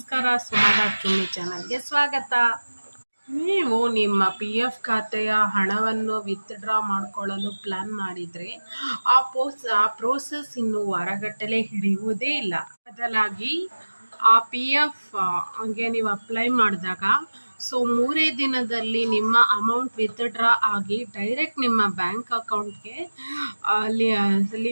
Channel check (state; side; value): inverted; both; correlation -1.00